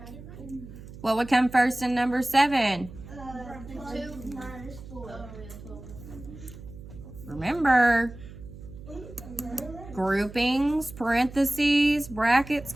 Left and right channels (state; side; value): noise; right; hum, 15 dB below the sound